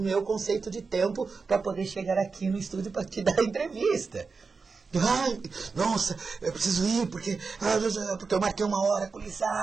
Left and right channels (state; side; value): quieter; left; 4.7 dB